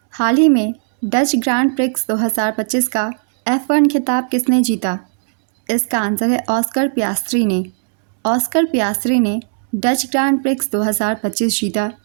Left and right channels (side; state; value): left; silent; digital silence